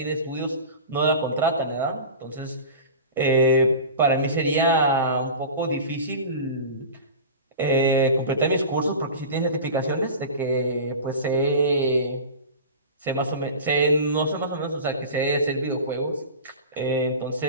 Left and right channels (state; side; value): inverted; both; correlation -0.34